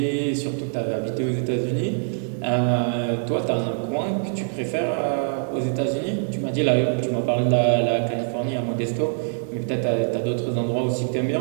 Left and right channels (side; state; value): left; silent; 63 dB below the other